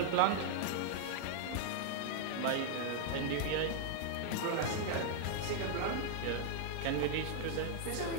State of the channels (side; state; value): both; different; correlation -0.01